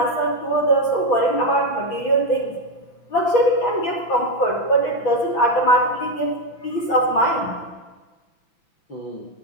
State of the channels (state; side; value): late; right; 5.9 ms